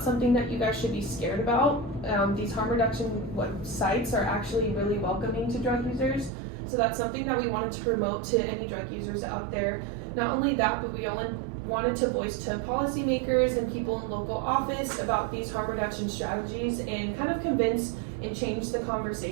something that you guys should be scared about. These harm reduction sites are actually really welcoming to drug users. So that's something that we wanted to promote to any drug users out there. Not only that, but we only wanted to voice to policymakers and people in local office about these harm reduction strategies and kind of convince and change the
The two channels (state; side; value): drops out; left; at 6.3 s